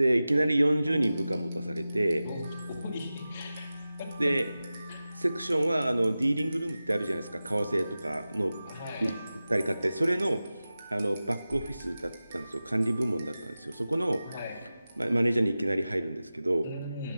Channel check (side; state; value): both; inverted; correlation -0.95